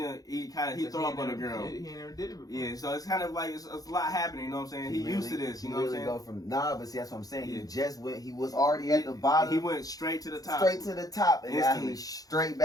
throw up on the girl. He never did it before. Yeah, so it's kind of like it's a lot happening, you know what I'm saying? He used to this, you know what I'm saying? Go from but see, that's what I'm saying. Yeah. He was already at the bottom. He went straight to the top. And now he's straight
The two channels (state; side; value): late; right; 0.18 ms